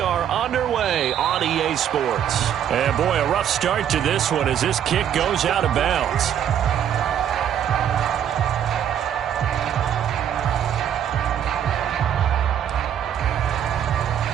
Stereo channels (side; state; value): left; quieter; 9.6 dB